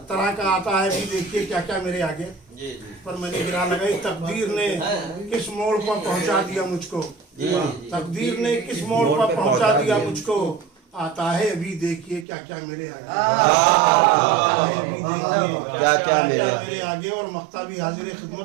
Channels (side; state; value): left; drops out; at 12.2 s